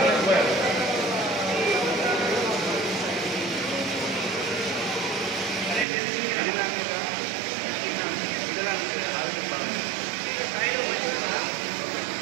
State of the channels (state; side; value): drops out; left; at 5.9 s